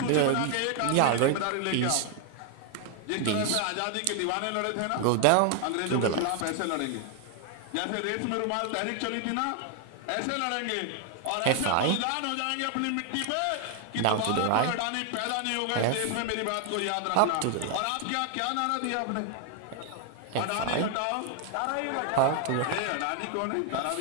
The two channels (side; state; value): both; different; correlation 0.00